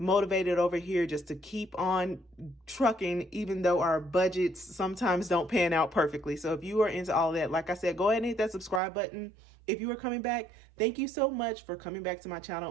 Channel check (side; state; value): left; drops out; at 8.8 s